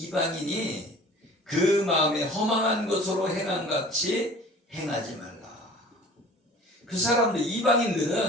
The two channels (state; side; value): normal; both; correlation 0.45